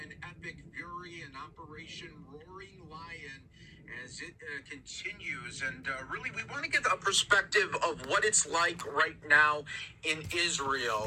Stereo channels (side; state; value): both; identical; correlation 1.00